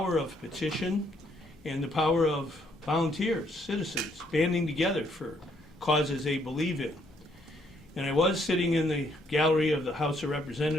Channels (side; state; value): both; normal; correlation 0.70